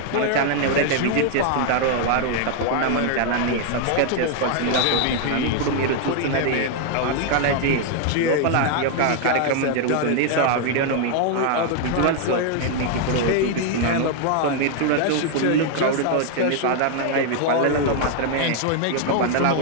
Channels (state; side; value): different; both; correlation 0.00